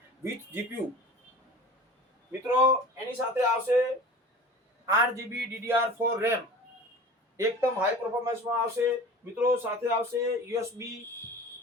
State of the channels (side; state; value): both; normal; correlation 0.39